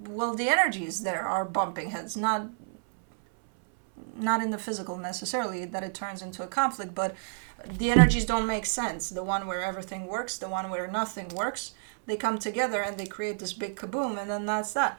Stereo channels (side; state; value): left; silent; 58 dB below the other